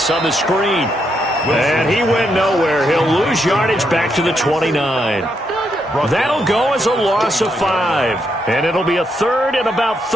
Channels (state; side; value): normal; both; correlation 0.79